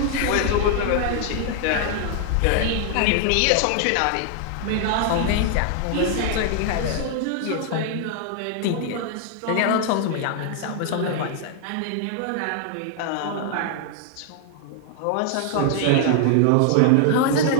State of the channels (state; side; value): different; both; correlation 0.00